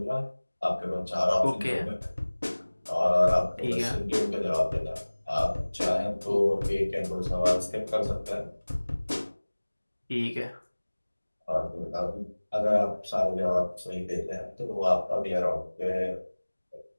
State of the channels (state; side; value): inverted; both; correlation -1.00